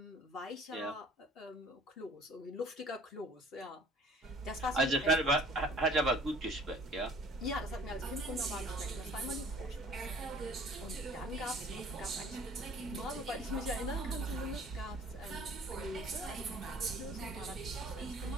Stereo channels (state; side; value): normal; both; correlation 0.51